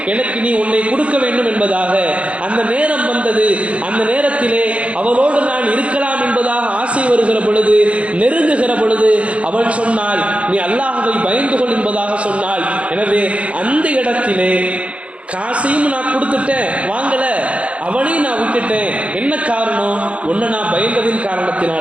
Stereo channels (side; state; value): left; late; 0.062 ms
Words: எனக்கு நீ உன்னை கொடுக்க வேண்டும் என்பதாக. அந்த நேரம் வந்தது. அந்த நேரத்திலே அவளோடு நான் இருக்கலாம் என்பதாக ஆசை வருகிற பொழுது, நெருங்குகிற பொழுது அவள் சொன்னாள், நீ அல்லாஹ்வை பயந்து கொள் என்பதாக சொன்னாள். எனவே அந்த இடத்திலே காசையும் நான் கொடுத்துட்டேன், வாங்கல, அவளையும் நான் விட்டுட்டேன். என்ன காரணம்? உன்னை நான் பயந்ததின்